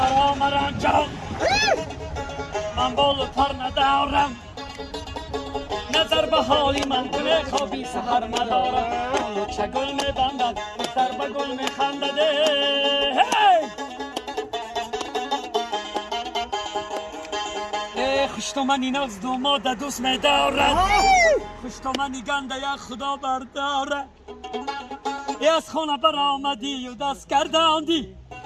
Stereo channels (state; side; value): identical; both; correlation 1.00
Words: مرا جان من بال و پر ندارم نظر به حالی من کنه خوابی سحر ندارم اولو چگل میبندد دختر به گل میخندد هی خوش تو منی ناز دوماد دوست میدارد خوش تو منی گنده یک خدا بردارد ای از خونه برآمدی و دست گرداندی